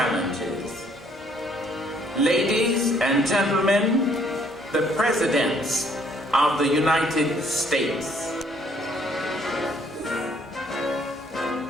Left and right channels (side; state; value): both; normal; correlation 0.64